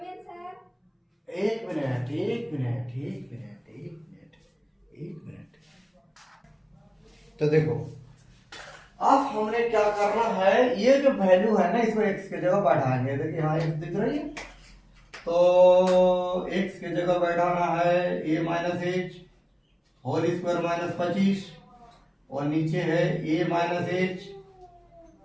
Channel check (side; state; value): both; identical; correlation 1.00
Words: एक मिनट। तो देखो अब हमने क्या करना है, ये जो वैल्यू है ना इसको x के जगह बैठाएंगे। देखिए यहाँ x दिख रही है, तो x के जगह बैठाना है a minus h whole square minus 25 और नीचे है a माइनस h